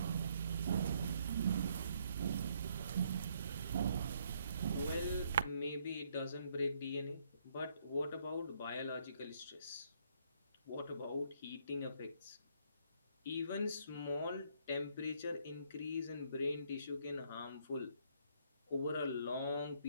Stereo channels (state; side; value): inverted; both; correlation -0.69